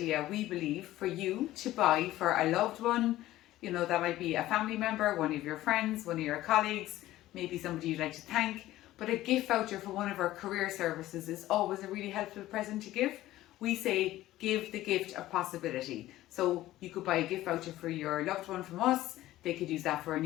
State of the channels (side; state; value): right; quieter; 15.3 dB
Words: we believe, for you to buy for a loved one. You know, that might be a family member, one of your friends, one of your colleagues, maybe somebody you'd like to thank. But a gift voucher for one of our career services is always a really helpful present to give. We say give the gift of possibility. So you could buy a gift voucher for your loved one from us. They could use that for a